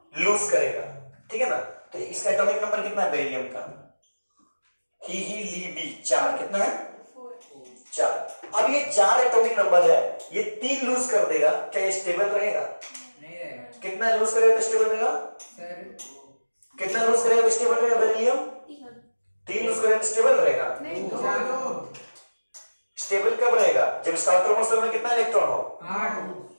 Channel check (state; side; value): inverted; both; correlation -1.00